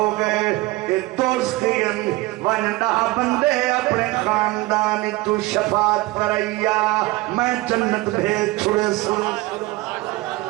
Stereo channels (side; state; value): left; quieter; 20.4 dB